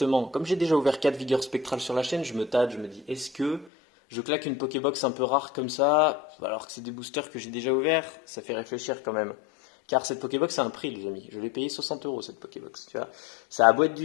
comme j'ai déjà ouvert 4 vigueurs spectrales sur la chaîne, je me tâte, je me dis, est-ce que je claque une Pokébox un peu rare comme ça, alors que c'est des boosters que j'ai déjà ouverts? Ça fait réfléchir quand même. Car cette Pokébox a un prix, les amis. Je l'ai payé 60 euros cette Pokébox, tu vois. Ça a beau être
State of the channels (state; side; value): drops out; right; at 3.7 s